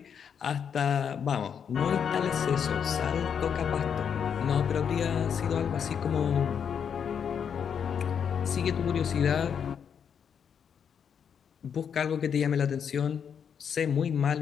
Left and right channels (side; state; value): right; quieter; 7.5 dB